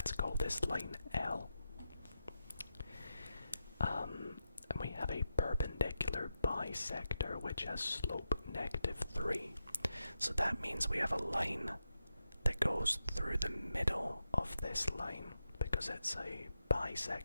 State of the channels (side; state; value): both; inverted; correlation -0.88